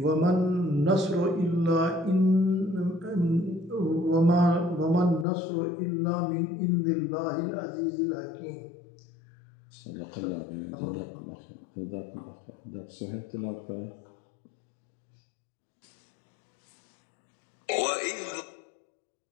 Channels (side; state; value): right; drops out; at 5.2 s